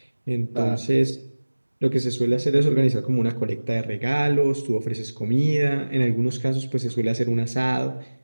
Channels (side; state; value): both; inverted; correlation -1.00